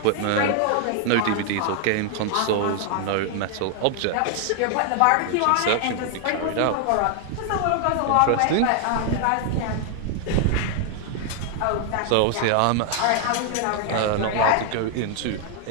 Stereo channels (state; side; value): different; both; correlation 0.00